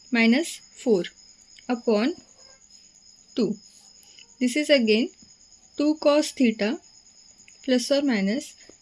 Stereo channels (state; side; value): identical; both; correlation 1.00